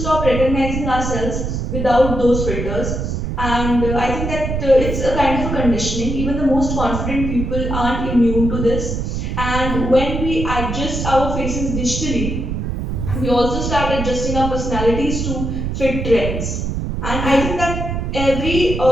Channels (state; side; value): noise; right; rumble, 3 dB below the sound